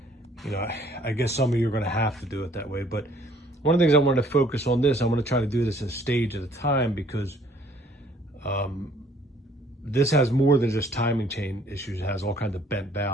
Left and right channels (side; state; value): both; normal; correlation 0.59